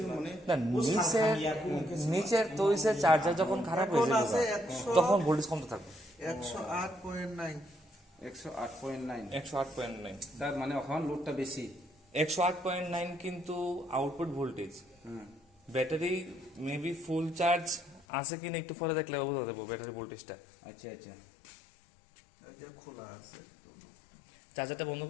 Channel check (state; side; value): drops out; right; at 18.1 s